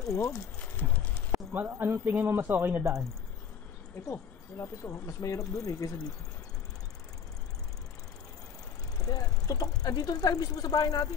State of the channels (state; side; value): quieter; right; 7.3 dB